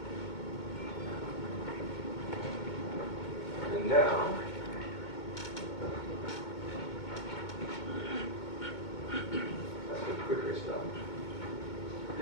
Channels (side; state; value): right; late; 2.2 ms